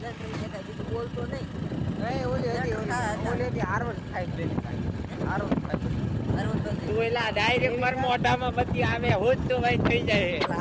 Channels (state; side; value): identical; both; correlation 1.00